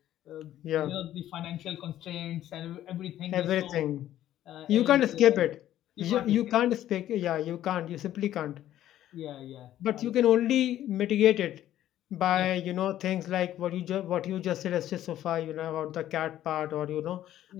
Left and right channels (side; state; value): right; quieter; 12.6 dB